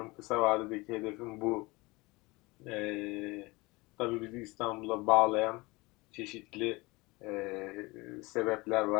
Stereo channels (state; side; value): quieter; right; 23.5 dB